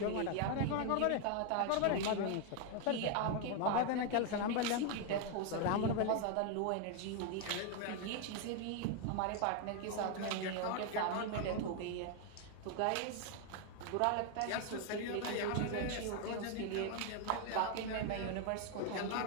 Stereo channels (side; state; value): both; different; correlation 0.01